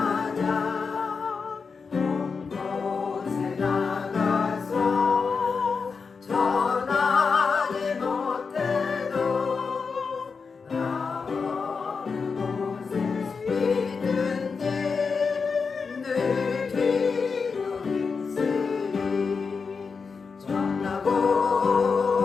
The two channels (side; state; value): right; quieter; 5.2 dB